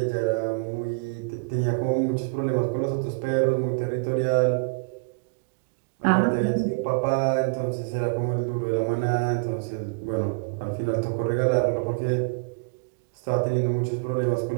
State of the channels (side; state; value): left; quieter; 35.5 dB